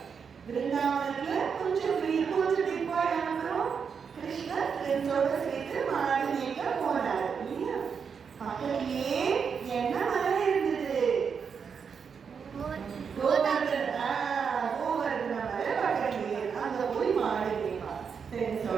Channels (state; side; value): quieter; left; 6.4 dB